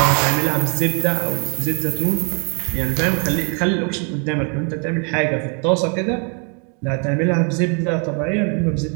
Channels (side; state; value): left; quieter; 37.4 dB